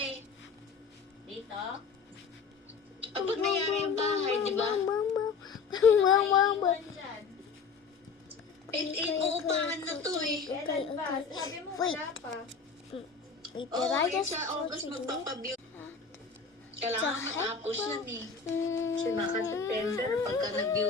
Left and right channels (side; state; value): right; quieter; 5.3 dB